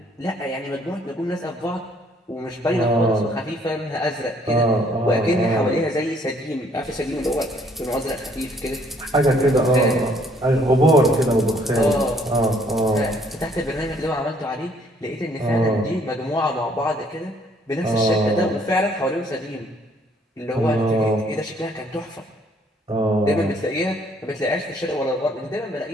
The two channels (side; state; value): both; normal; correlation 0.63